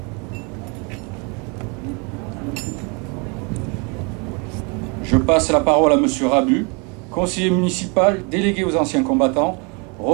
Je passe la parole à M. Rabu, conseiller municipal, délégué aux anciens combattants,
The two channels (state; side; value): quieter; left; 33.3 dB